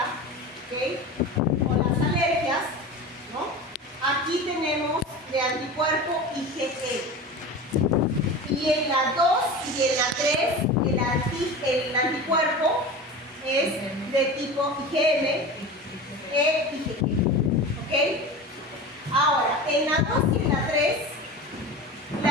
¿okay? O las alergias, ¿no? Aquí tenemos de anticuerpo IgE. Y en la 2 y en la 3, el anticuerpo es de tipo IgM e IgG. ¿Ok? Ahora, en la 2 y en la 3,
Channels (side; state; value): both; normal; correlation 0.31